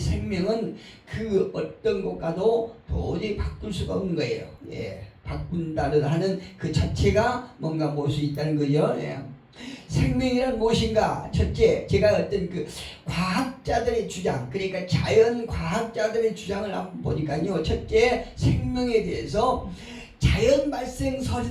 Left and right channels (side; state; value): both; identical; correlation 1.00